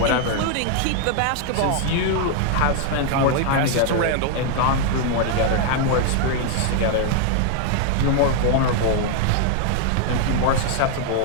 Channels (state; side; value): different; both; correlation 0.00